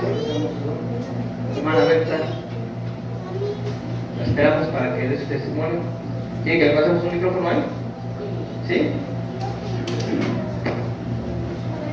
Hermana Berta. La esperamos para que dé su testimonio. ¿Quiere que le pasemos un micrófono ahí? ¿Sí?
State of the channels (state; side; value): identical; both; correlation 1.00